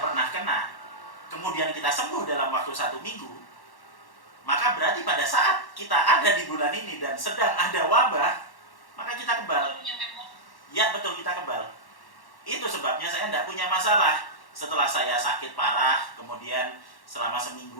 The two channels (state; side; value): late; right; 1.1 ms